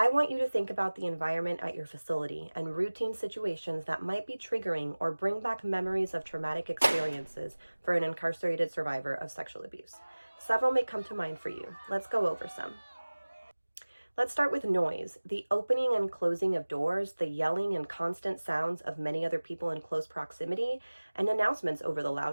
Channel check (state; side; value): inverted; both; correlation -1.00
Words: want you to think about the environment at your facility and routine situations that might be triggering or bring back memories of traumatic experiences for an incarcerated survivor of sexual abuse. Several may come to mind for you. Let's go over some. Let's start with noise. The opening and closing of doors, the yelling and constant sounds of many other people in close proximity, and announcements over the